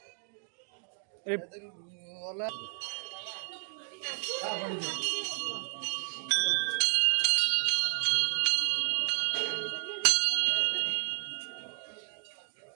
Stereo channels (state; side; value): silent; left; digital silence